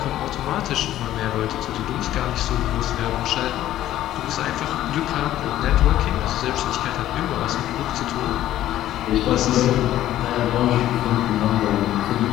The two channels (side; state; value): right; quieter; 13.2 dB